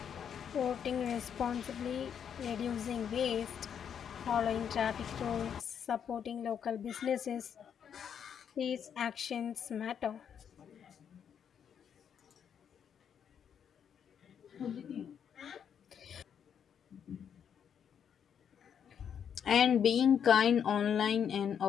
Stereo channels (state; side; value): quieter; right; 8.1 dB